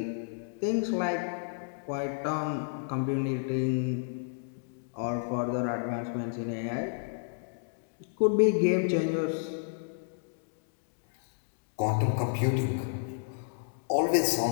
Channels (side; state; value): right; silent; digital silence